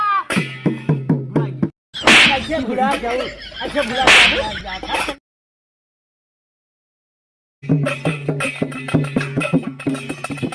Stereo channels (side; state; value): both; identical; correlation 1.00